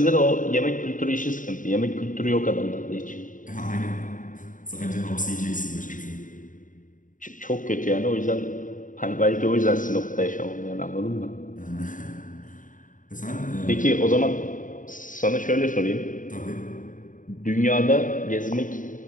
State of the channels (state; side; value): late; right; 0.38 ms